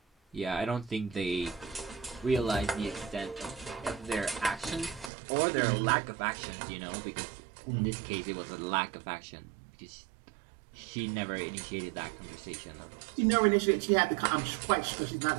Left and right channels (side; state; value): left; drops out; at 5.1 s